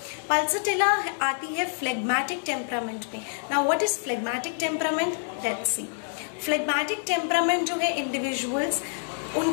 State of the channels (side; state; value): right; silent; 60 dB below the other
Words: पल्सटिला आती है फ्लेग्मेटिक टेम्परामेंट में। Now what is phlegmatic temperament, let's see. Phlegmatic temperament जो है इंडिविजुअल्स,